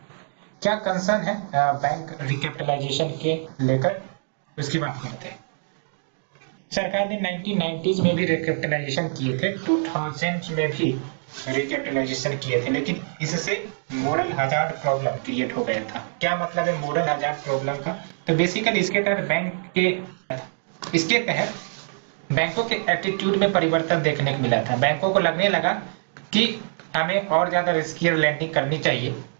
क्या कंसर्न है बैंक रिकैपिटलाइजेशन के लेकर, उसकी बात करते हैं। सरकार ने 1990s में भी रिकैपिटलाइजेशन किए थे, 2000 में भी रिकैपिटलाइजेशन किए थे, लेकिन इससे मोरल हजार्ड प्रॉब्लम क्रिएट हो गया था। क्या मतलब है मोरल हजार्ड प्रॉब्लम का? तो बेसिकली इसके तहत बैंकों के एटीट्यूड में परिवर्तन देखने को मिला था। बैंकों को लगने लगा कि हमें और ज्यादा रिस्कियर लैंडिंग करनी चाहिए,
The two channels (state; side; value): silent; left; digital silence